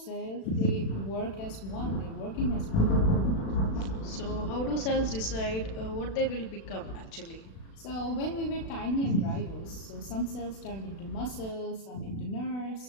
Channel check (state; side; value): late; right; 36 ms